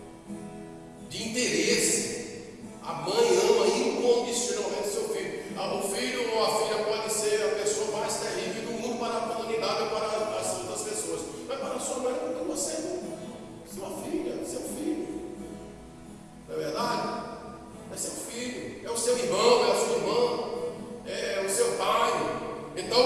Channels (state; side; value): identical; both; correlation 1.00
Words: de interesse. A mãe ama incondicionalmente seu filho. O filho ou a filha pode ser a pessoa mais terrível do mundo para a comunidade ou para as outras pessoas, mas para a sua mãe, porque você é sua filha, seu filho. Não é verdade? É seu filho, é o seu irmão, é a sua irmã, é o seu pai.